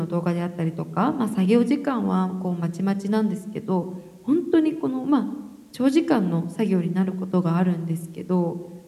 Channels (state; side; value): identical; both; correlation 1.00